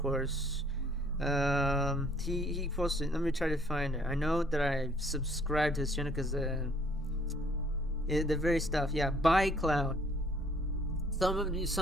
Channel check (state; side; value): normal; both; correlation 0.61